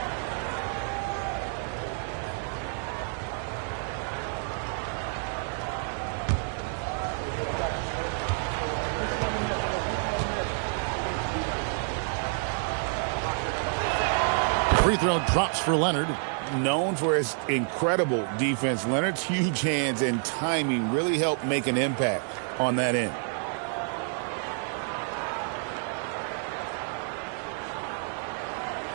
Free throw drops for Leonard. Known for his incredible defense, Leonard's huge hands and timing really helped make an impact on that end.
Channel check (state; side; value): silent; left; 59 dB below the other